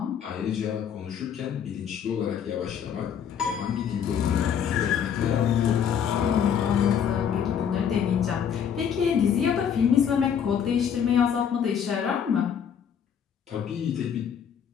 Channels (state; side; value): quieter; right; 8.1 dB